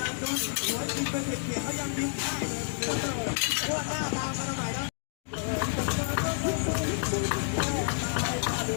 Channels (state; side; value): silent; right; digital silence